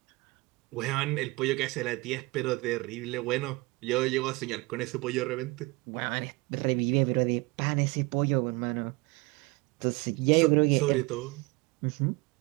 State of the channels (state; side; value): quieter; left; 25.0 dB